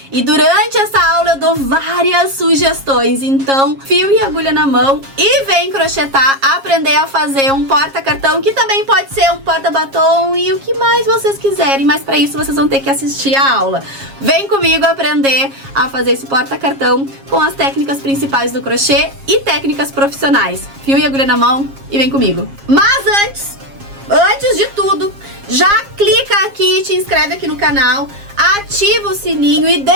e durante essa aula eu dou várias sugestões. Então, fio e agulha na mão e vem crochetar, aprender a fazer um porta-cartão, que também pode ser um porta-batom e o que mais vocês quiserem, mas pra isso vocês vão ter que assistir a aula. Vem comigo aprender a fazer esse porta-cartão com as técnicas principais do crochê e técnicas profissionais. Fio e agulha na mão e vem comigo. Mas antes de tudo, já clica aqui, te inscreve aqui no canal, ativa o sininho e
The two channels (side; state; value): left; late; 7.4 ms